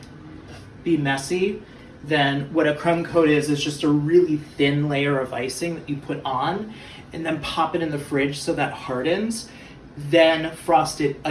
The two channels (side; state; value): both; identical; correlation 1.00